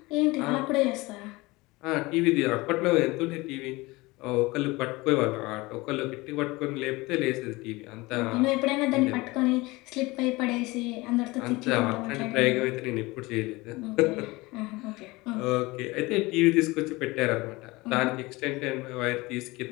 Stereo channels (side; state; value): right; quieter; 22.2 dB